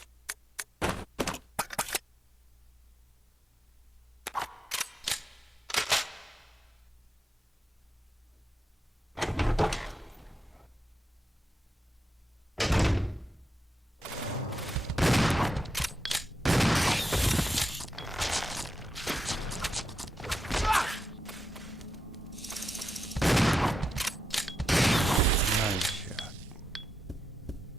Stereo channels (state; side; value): normal; both; correlation 0.86